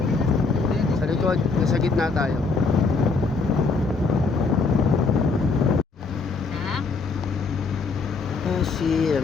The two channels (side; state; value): right; quieter; 4.3 dB